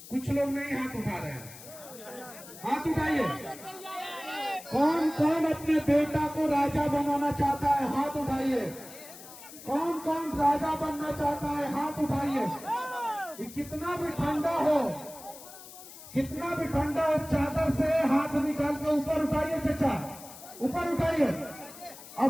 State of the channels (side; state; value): left; noise; hiss, 16 dB below the sound